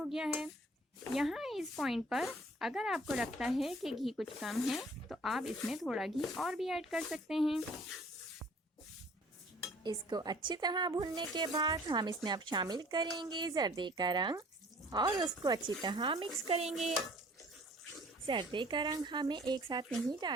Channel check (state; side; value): normal; both; correlation 0.53